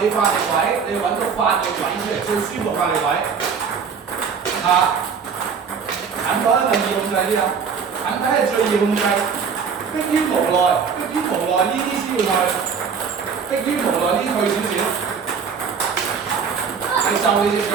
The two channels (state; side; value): quieter; left; 6.1 dB